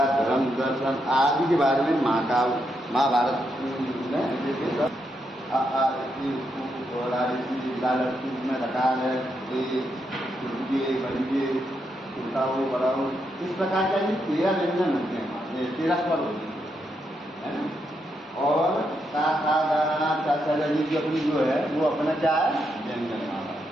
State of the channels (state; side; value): normal; both; correlation 0.81